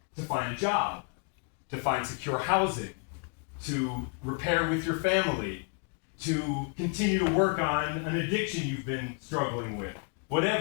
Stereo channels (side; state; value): right; quieter; 39.4 dB